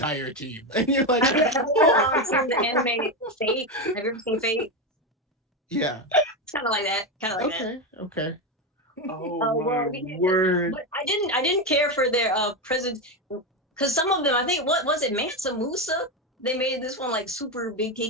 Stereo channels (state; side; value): normal; both; correlation 0.12